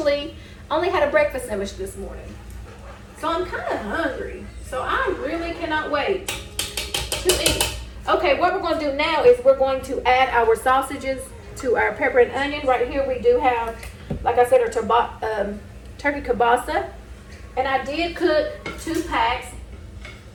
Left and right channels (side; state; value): both; identical; correlation 1.00